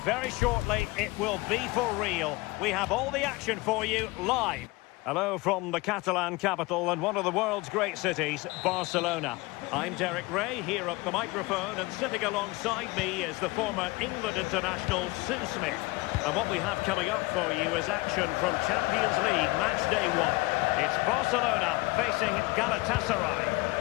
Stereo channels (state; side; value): quieter; right; 22.8 dB